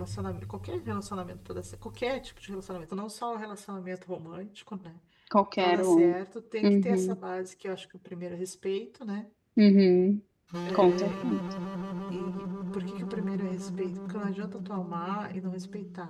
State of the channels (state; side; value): identical; both; correlation 1.00